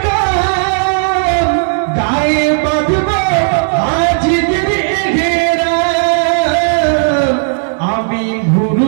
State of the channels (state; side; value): silent; left; digital silence